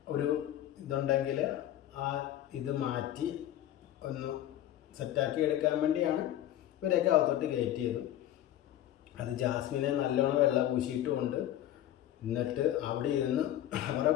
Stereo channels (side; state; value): right; quieter; 12.6 dB